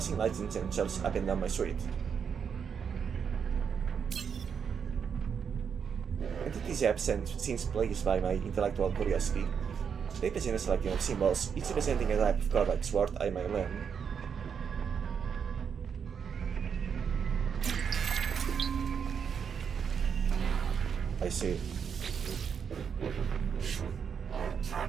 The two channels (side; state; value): left; quieter; 6.9 dB